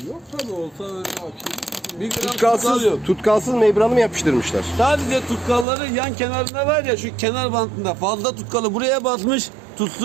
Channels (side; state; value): left; drops out; at 5.7 s